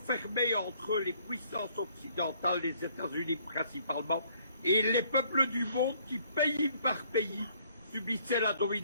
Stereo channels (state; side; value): inverted; both; correlation -0.63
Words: entre les puissances occidentales, les États-Unis principalement, et les peuples du monde qui, pays par pays, subissaient la